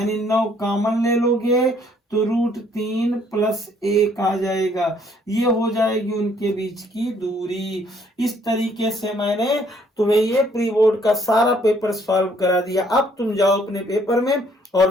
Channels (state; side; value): normal; both; correlation 0.64